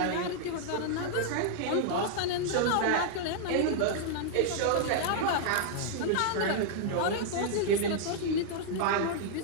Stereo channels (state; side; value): different; both; correlation -0.01